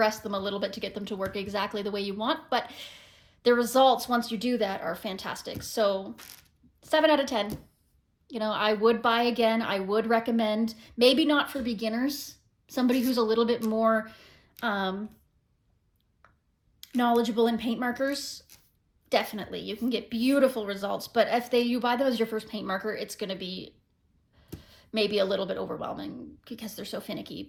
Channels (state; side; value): identical; both; correlation 1.00